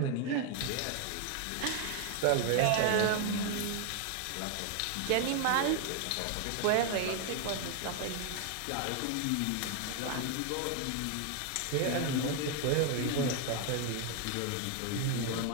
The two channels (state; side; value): different; both; correlation 0.01